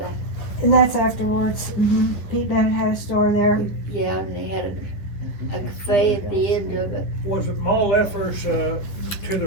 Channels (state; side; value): late; right; 11 ms